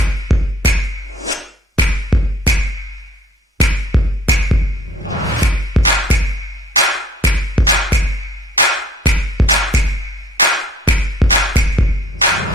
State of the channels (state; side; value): normal; both; correlation 0.55